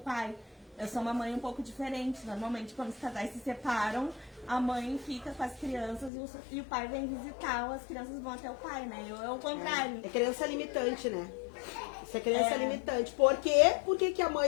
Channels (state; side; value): drops out; right; at 6.1 s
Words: Eu sou uma mãe um pouco diferente. Normalmente, quando os casais se separam, a mãe fica com as crianças e o pai vem visitar, ou as crianças vão até o pai, né? É o contrário. É criança limitante, né? Isso é criança limitante. Por quê? Por que a